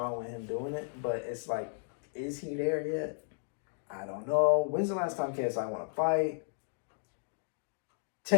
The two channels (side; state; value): right; silent; digital silence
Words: with him doing it, but it's like, is he there yet? I don't know. When's the last time KSI won a fight?